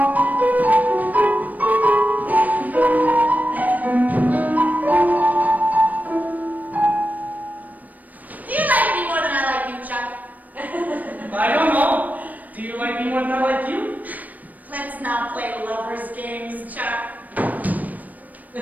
you like me more than I like you, Chuck? I don't know. Do you like me more than I like you? Let's not play lovers' games, Chuck.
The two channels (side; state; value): left; late; 0.079 ms